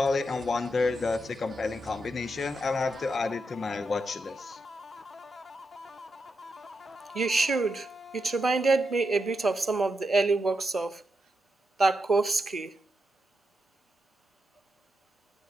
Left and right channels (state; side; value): normal; both; correlation 0.85